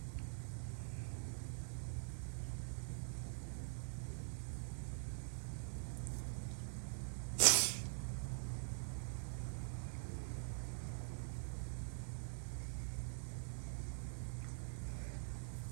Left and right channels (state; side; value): silent; left; digital silence